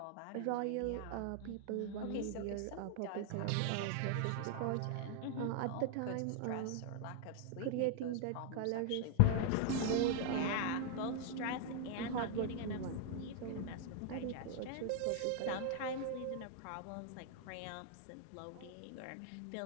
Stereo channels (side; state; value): both; different; correlation 0.00